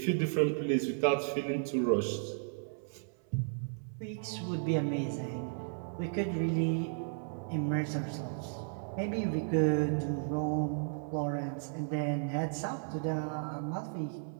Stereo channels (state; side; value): silent; left; 55 dB below the other